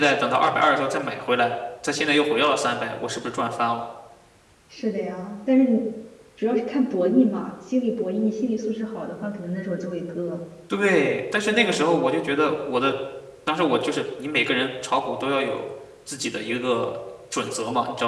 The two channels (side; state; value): both; identical; correlation 1.00